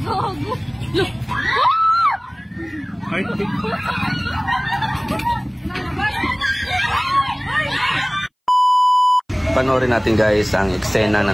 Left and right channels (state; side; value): identical; both; correlation 1.00